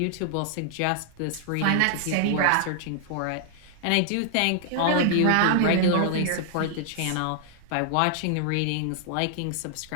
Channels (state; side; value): different; both; correlation -0.01